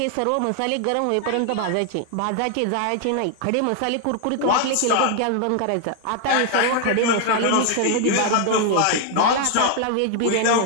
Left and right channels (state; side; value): different; both; correlation 0.00